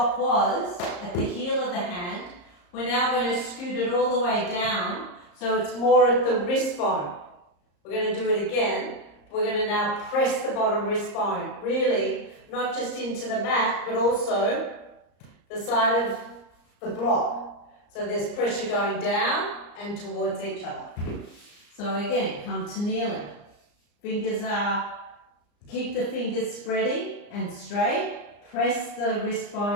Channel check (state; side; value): late; right; 34 ms